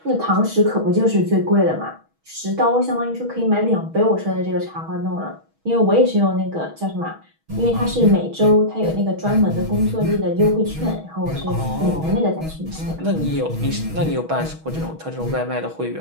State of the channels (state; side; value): late; left; 6.3 ms